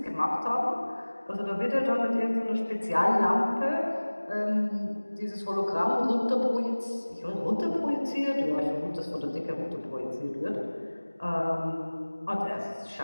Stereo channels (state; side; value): inverted; both; correlation -1.00